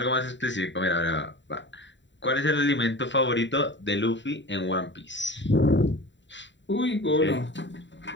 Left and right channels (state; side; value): late; right; 0.53 ms